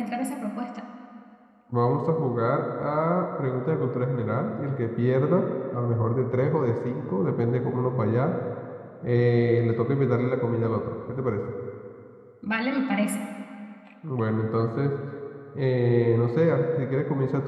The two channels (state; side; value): identical; both; correlation 1.00